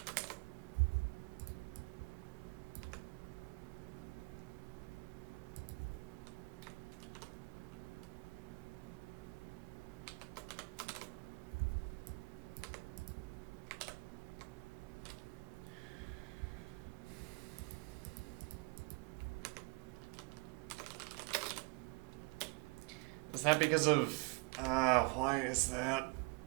Is that because of... why is that?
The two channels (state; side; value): quieter; left; 28.0 dB